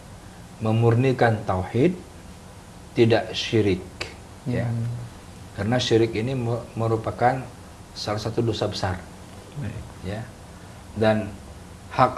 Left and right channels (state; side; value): identical; both; correlation 1.00